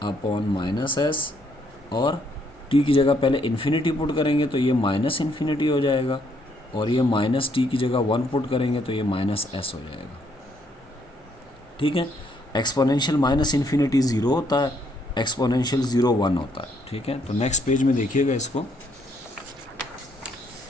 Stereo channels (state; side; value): normal; both; correlation 0.70